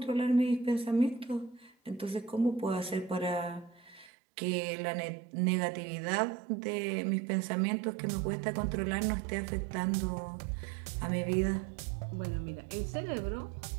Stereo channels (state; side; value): drops out; left; at 4.1 s